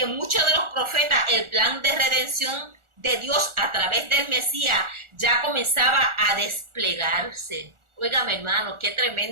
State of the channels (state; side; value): late; left; 1.4 ms